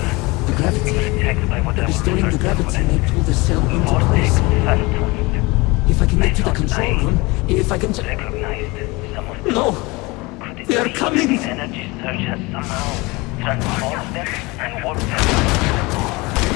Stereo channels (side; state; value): right; quieter; 24.1 dB